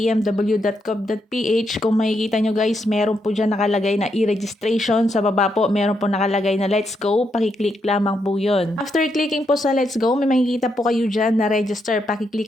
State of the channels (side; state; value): both; normal; correlation 0.80